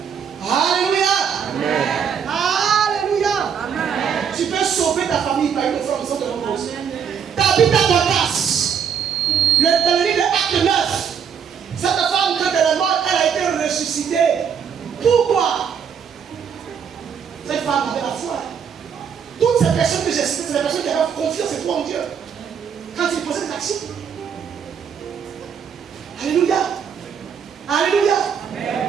Alléluia. Alléluia. Tu peux sauver ta famille par une offrande sans te reposer. Tabitha Dorcas, dans le livre de Acte 9, cette femme, quand elle est morte, elle a été ressuscitée. Pourquoi? Cette femme avait la foi. Toutes ces personnes que j'ai citées, c'est des personnes qui avaient confiance et foi en Dieu. Quand ils posaient des actions. Alléluia. Alléluia.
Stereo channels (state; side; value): quieter; left; 7.4 dB